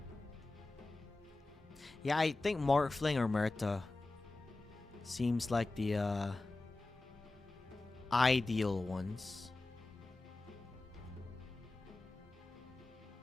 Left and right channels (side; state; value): right; quieter; 3.1 dB